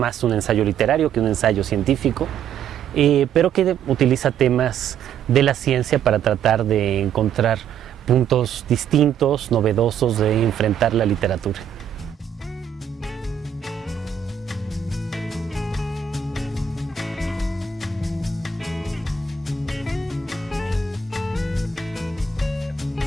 un ensayo literario que un ensayo científico, pero que utiliza temas de la ciencia para tratar de encontrar puntos distintos, novedosos de enfrentar la literatura.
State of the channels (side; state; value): left; quieter; 7.5 dB